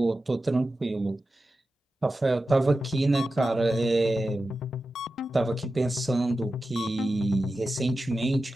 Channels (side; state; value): both; normal; correlation 0.93